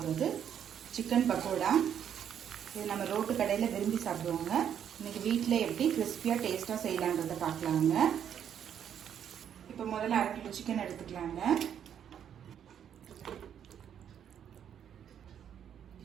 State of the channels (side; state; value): left; quieter; 9.0 dB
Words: சிக்கன் பக்கோடா. இது நம்ம ரோட்டு கடையில் விரும்பி சாப்பிடுவோங்க. இன்னைக்கு வீட்டில் எப்படி கிறிஸ்பியாக டேஸ்ட்டாக செய்யலான்றதை பார்க்கலாங்க. இப்போ முதல்ல 1/2 கிலோ சிக்கன் எடுத்துக்கலாங்க.